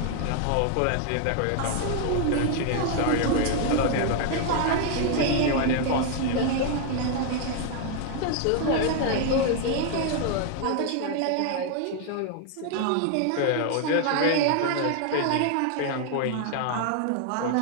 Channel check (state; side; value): different; both; correlation 0.00